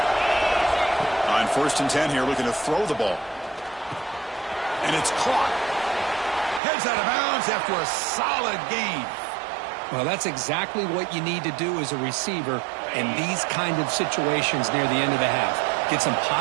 On first and 10 here, looking to throw the ball. And it's caught. Heads out of bounds after a solid gain. Well, that's exactly what you need to do as a receiver in these kind of situations near the end of the half. Get some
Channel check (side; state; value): left; drops out; at 6.6 s